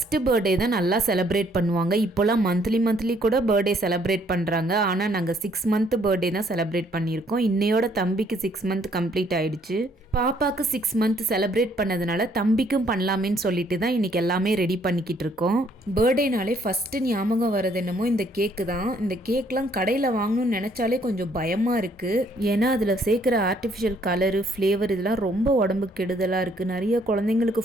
birthday தான் நல்லா செலிப்ரேட் பண்ணுவாங்க. இப்போலாம் மந்த்லி கூட பர்த்டே செலிப்ரேட் பண்ணுறாங்க. ஆனால் நாங்கள் 6 மந்த் பர்த்டே தான் செலிப்ரேட் பண்ணியிருக்கோம். இன்னையோட தம்பிக்கு 6 மந்த் கம்ப்ளீட் ஆயிடுச்சு. பாப்பாவுக்கு 6 மந்த் செலிப்ரேட் பண்ணதுனால தம்பிக்கும் பண்ணலாமேன்னு சொல்லிட்டு தான் இன்றைக்கி எல்லாமே ரெடி பண்ணிக்கிட்டு இருக்கோம். பர்த்டேனாலே ஃபஸ்ட்டு ஞாபகம் வர்றது என்னமோ இந்த கேக்கு தான். இந்த கேக்லாம் கடையில் வாங்கணும்னு நினச்சாலே கொஞ்சம் பயமாக இருக்குது. ஏன்னா அதில் சேர்க்குற ஆர்டிஃபிஷியல் கலரு, ஃப்ளேவர் இதெல்லாம் ரொம்ப உடம்புக்கு கெடுதலாக இருக்குது. நிறைய குழந்தைங்களுக்கு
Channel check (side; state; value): both; normal; correlation 0.65